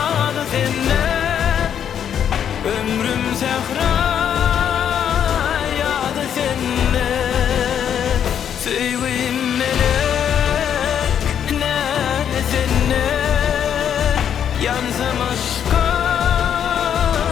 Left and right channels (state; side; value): quieter; right; 8.9 dB